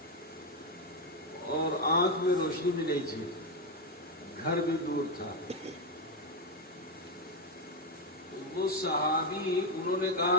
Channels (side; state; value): both; normal; correlation 0.06